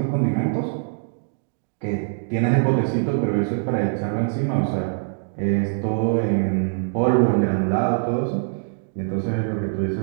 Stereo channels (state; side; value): silent; left; digital silence